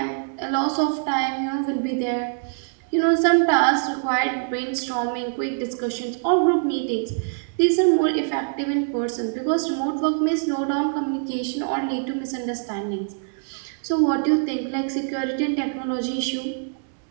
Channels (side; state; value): left; silent; digital silence